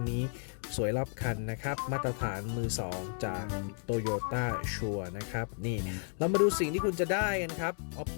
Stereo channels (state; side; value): silent; right; 56 dB below the other